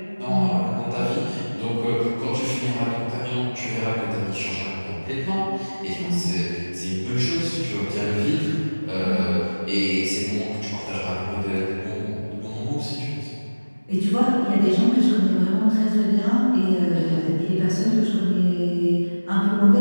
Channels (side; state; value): both; inverted; correlation -1.00